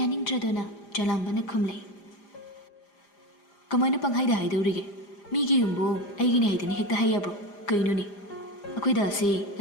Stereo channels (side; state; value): right; late; 4.9 ms